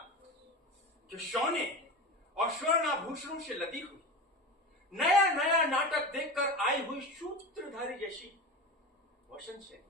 कि सोने और स्वर्णाभूषणों से लदी हुई नया नया नाटक देखकर आई हुई सूत्रधारी जैसी वसंत सेन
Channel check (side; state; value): both; normal; correlation 0.27